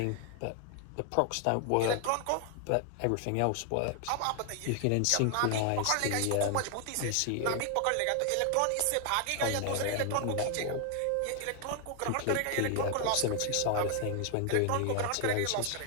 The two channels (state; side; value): different; both; correlation 0.00